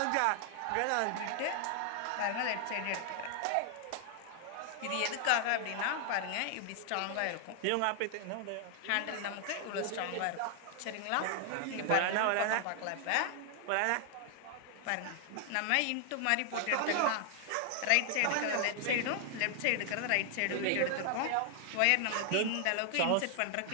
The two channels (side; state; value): both; different; correlation 0.00